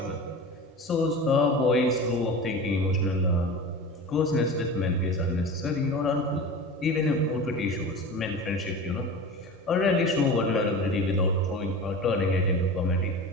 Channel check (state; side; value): normal; both; correlation 0.32